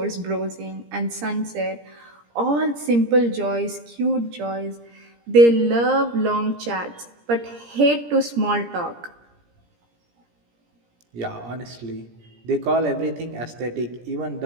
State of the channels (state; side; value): late; left; 17 ms